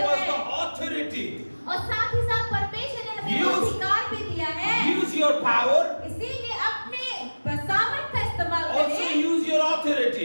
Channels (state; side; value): inverted; both; correlation -1.00